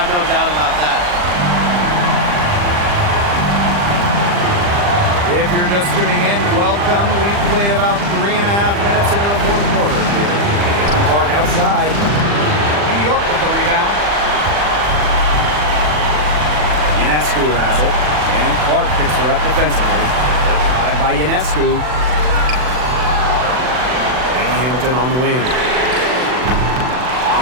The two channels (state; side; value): late; left; 40 ms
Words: no doubt about that. If you're just tuning in, welcome. We've played about 3.5 minutes into the fourth quarter here. Caitlin Clark outside. New York with the rebound. Ionescu has it. And Clark picks her up defensively. The drive by Ionescu. Lane Hamilton on the wing.